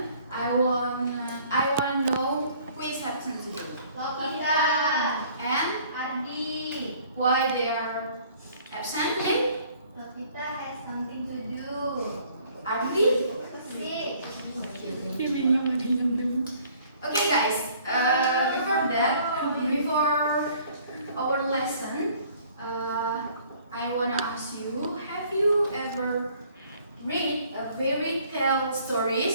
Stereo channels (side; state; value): both; inverted; correlation -0.57